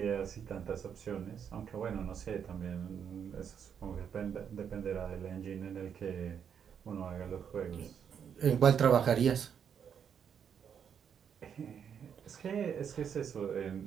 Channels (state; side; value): quieter; left; 7.8 dB